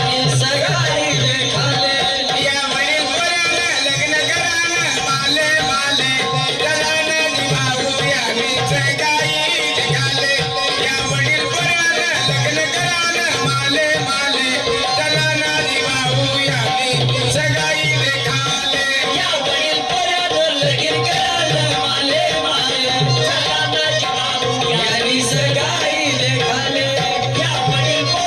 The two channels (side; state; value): both; identical; correlation 1.00